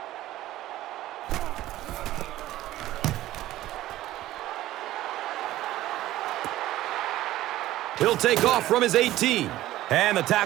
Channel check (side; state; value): left; quieter; 15.1 dB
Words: He'll take off from his 18. And the